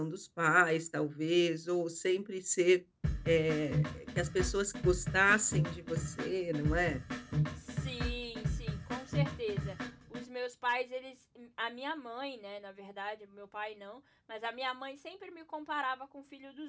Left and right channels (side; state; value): both; identical; correlation 1.00